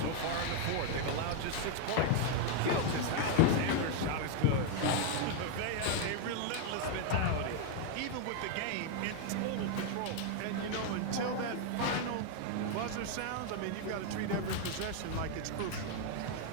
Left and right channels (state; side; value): different; both; correlation 0.01